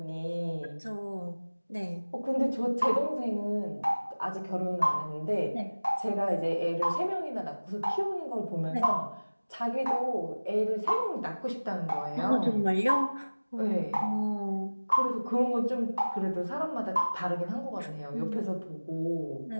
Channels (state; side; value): inverted; both; correlation -1.00